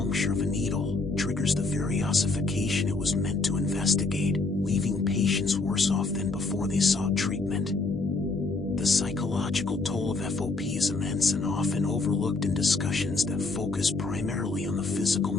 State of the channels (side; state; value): right; quieter; 3.6 dB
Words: of a needle, triggers the very ossification it was meant to investigate, leaving patients worse off than before they sought treatment. The psychological toll of FOP is immense and often overlooked in discussions that focus primarily on the physical